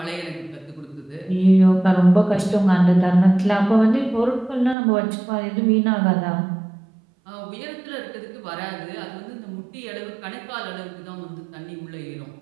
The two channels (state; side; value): drops out; left; at 4.8 s